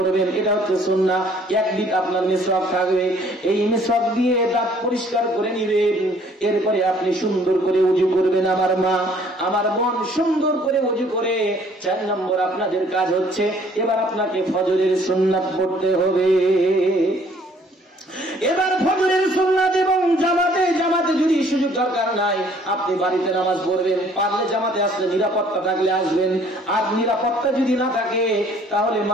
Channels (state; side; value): normal; both; correlation 0.59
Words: এটা হচ্ছে সুন্নাহ। একদিক আপনার মিসওয়াক থাকবে, এই মিসওয়াক দিয়ে দাঁত পরিষ্কার করে নেবেন। এরপরে আপনি সুন্দর করে ওযু করবেন আমার মা, আমার বোন, সুন্দর করে ওযু করে 4 নম্বর আপনাদের কাজ হচ্ছে এবার আপনাকে ফজরের সুন্নাত পড়তে হবে। এবার ফজরের সুন্নাত এবং জামাতে যদি সুযোগ দরকার নাই, আপনি বাড়িতে নামাজ পড়বেন। পারলে জামাতে আসলে, নিরাপত্তা থাকলে আসবেন, আর নিরাপত্তা যদি না থাকে তাহলে